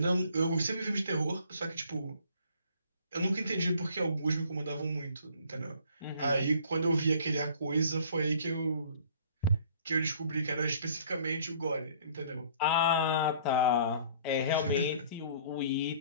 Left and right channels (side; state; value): both; inverted; correlation -0.55